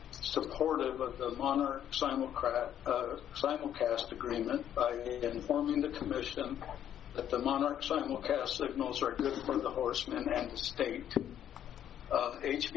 supportive of the Monarch simulcast agreement by informing the commission that the Monarch simulcast signals are good for the horsemen and the state.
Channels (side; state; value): right; quieter; 10.3 dB